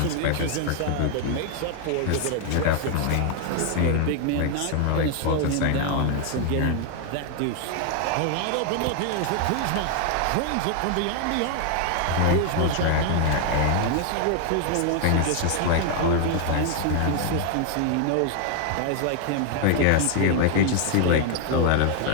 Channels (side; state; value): both; different; correlation 0.00